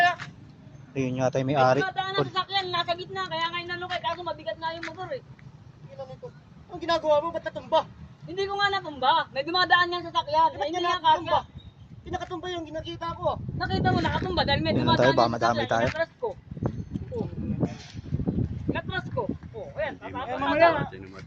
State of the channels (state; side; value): identical; both; correlation 1.00